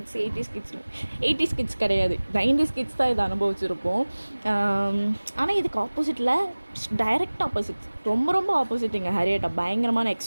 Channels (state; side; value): inverted; both; correlation -1.00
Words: 80s கிட்ஸ் கிடையாது, 90s கிட்ஸ் தான் இதை அனுபவிச்சிருப்போம். ஆனால் இதுக்கு ஆப்போசிட்டில் டைரக்ட் ஆப்போசிட், ரொம்ப ரொம்ப ஆப்போசிட். எங்கள் ஹரியட்டா பயங்கரமான